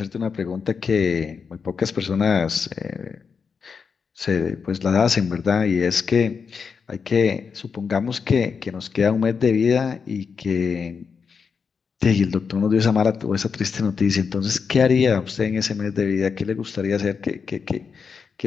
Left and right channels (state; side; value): quieter; right; 5.8 dB